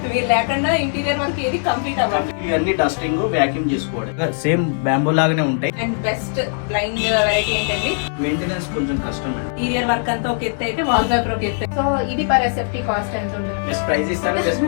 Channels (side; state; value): right; silent; 58 dB below the other